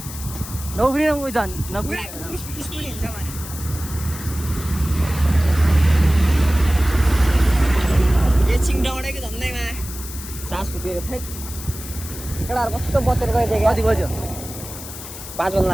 नौफ्रिन उयो झन् स्कुटी हिँड्छ भने एकछिन डौडेको झन्डैमा सास फुकेको थियो केटाहरू कस्तो बतेर गइदियो कति बज्यो 5 बज्न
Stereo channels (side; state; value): left; noise; hiss, 12 dB below the sound